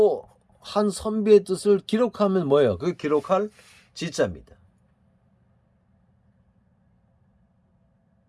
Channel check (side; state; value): both; identical; correlation 1.00